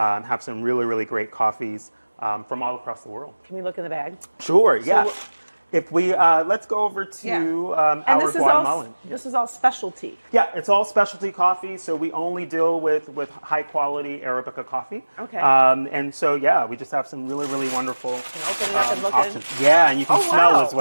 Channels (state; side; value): inverted; both; correlation -1.00